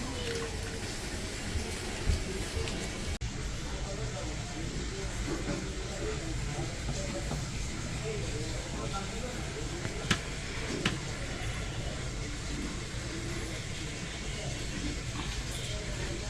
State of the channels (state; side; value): identical; both; correlation 1.00